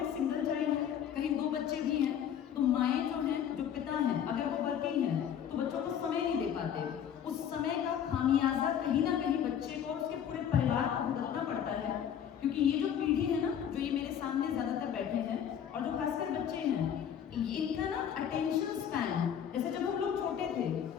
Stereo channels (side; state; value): right; quieter; 8.9 dB